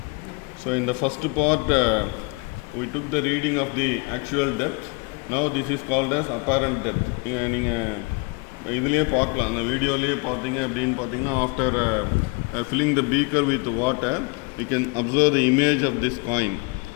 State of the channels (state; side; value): quieter; right; 29.5 dB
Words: So in the first part we took the reading of the actual depth. Now this is called as apparent depth. நீங்கள் இதுலேயே பார்க்கலாம், அந்த வீடியோலேயே பார்த்தீங்க அப்படின்னு பார்த்தீங்கன்னா after filling the beaker with water we can observe the image of this coin.